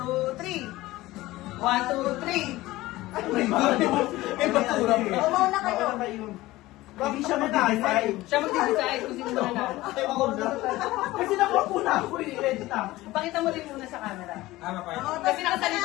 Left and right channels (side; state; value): right; quieter; 18.0 dB